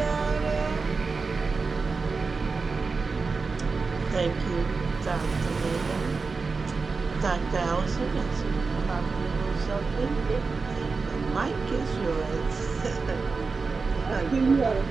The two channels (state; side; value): quieter; left; 4.4 dB